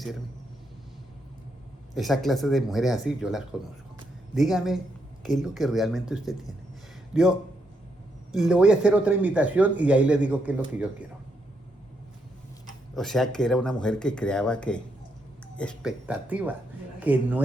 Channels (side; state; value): both; normal; correlation 0.78